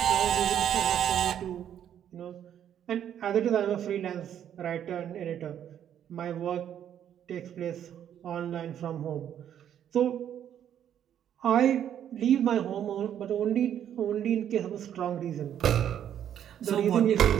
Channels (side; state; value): left; quieter; 9.9 dB